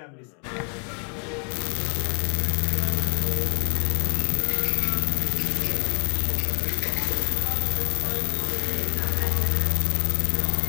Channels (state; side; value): quieter; right; 39.9 dB